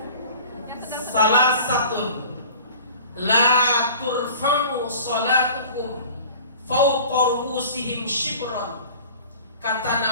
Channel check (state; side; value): inverted; both; correlation -0.43